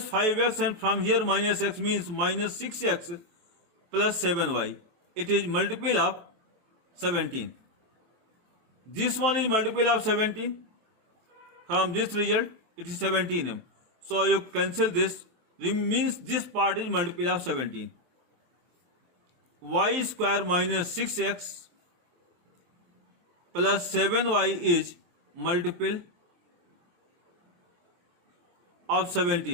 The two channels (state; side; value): late; left; 23 ms